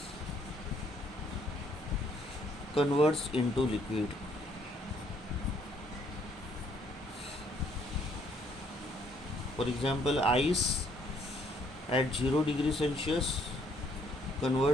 converts into liquid. For example, ice at 0 degrees Celsius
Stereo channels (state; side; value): normal; both; correlation 0.67